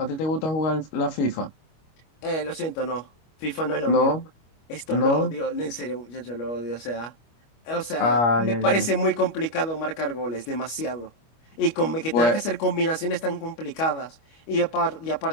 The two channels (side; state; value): right; late; 25 ms